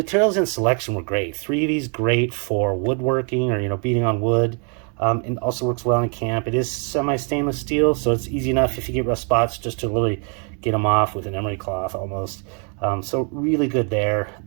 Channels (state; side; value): quieter; left; 39.2 dB